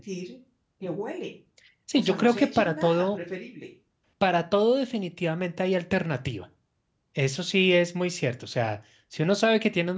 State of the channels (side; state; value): both; identical; correlation 1.00